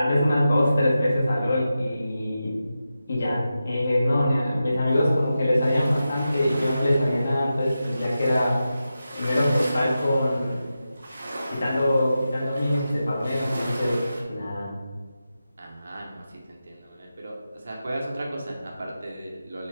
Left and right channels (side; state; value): both; inverted; correlation -0.91